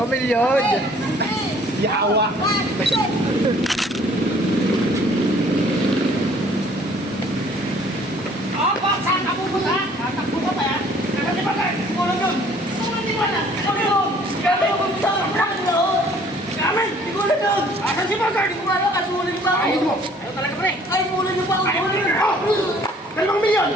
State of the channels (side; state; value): both; normal; correlation 0.57